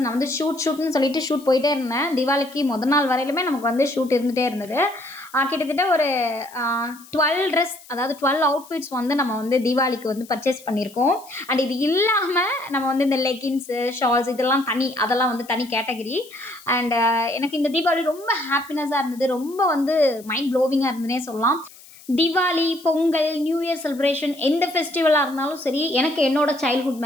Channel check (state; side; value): noise; left; hiss, 22 dB below the sound